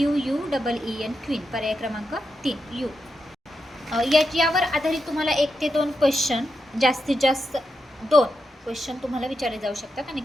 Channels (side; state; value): both; normal; correlation 0.86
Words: क्वीन, पर्याय क्रमांक 3 U. यावर आधारित तुम्हाला 1 ते 2 क्वेश्चन, जास्तीत जास्त 2 क्वेश्चन तुम्हाला विचारले जाऊ शकतात आणि